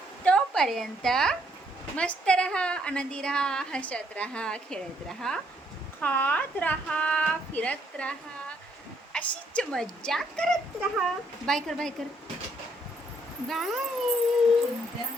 तोपर्यंत मस्त रहा, आनंदी रहा, हसत रहा, खेळत रहा, खात रहा, फिरत रहा, अशीच मज्जा करत रहा. बाय कर बाय कर. बाय.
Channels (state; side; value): normal; both; correlation 0.70